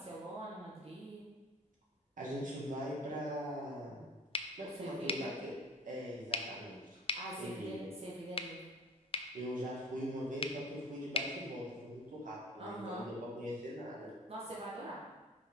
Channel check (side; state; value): both; normal; correlation 0.41